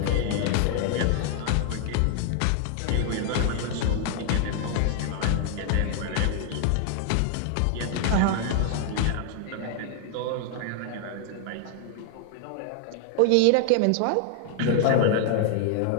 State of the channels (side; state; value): both; different; correlation 0.00